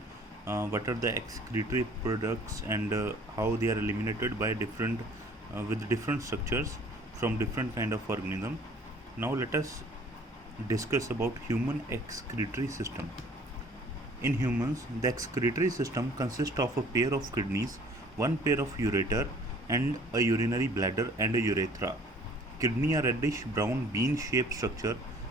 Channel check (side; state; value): both; normal; correlation 0.54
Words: what are the excretory products and how they are eliminated by different with different structures from different kind of organism. Now let us discuss about human excretory system. In humans, the excretory system consists of a pair of kidneys, one pair of ureter, and a urinary bladder and a urethra. Kidney are reddish brown bean-shaped structure